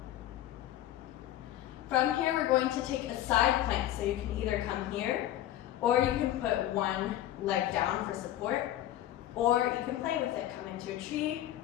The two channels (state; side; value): quieter; right; 13.1 dB